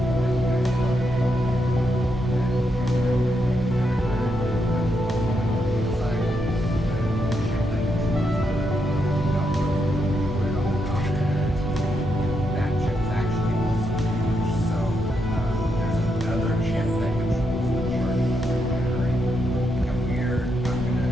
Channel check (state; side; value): normal; both; correlation 0.81